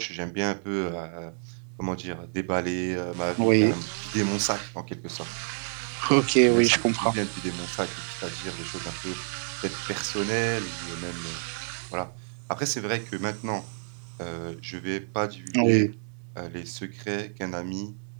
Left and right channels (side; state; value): left; silent; digital silence